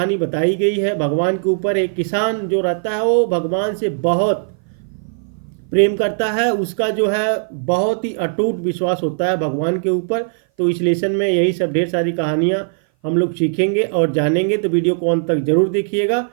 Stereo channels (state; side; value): silent; left; 58 dB below the other